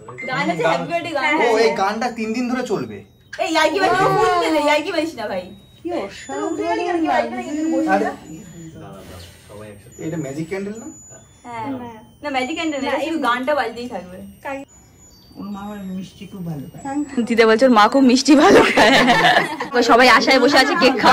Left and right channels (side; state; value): both; identical; correlation 1.00